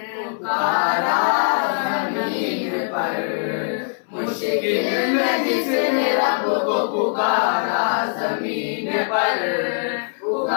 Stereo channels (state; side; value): silent; right; 60 dB below the other